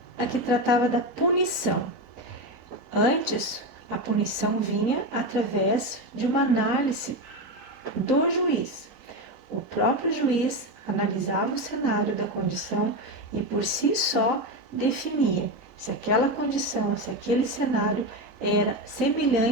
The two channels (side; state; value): right; late; 3.9 ms